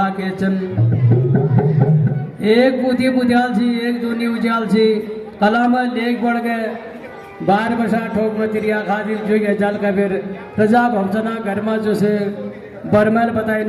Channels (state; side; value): identical; both; correlation 1.00